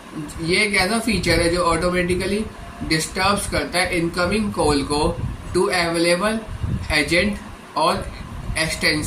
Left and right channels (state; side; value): identical; both; correlation 1.00